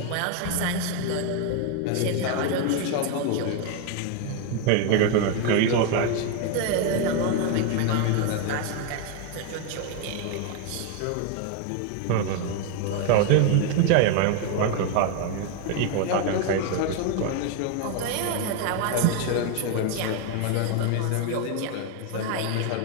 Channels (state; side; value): different; both; correlation 0.01